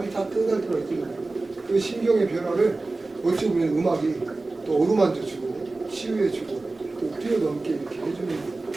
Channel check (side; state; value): left; quieter; 3.3 dB